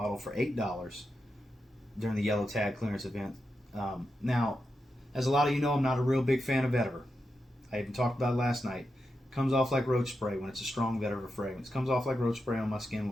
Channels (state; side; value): normal; both; correlation 0.88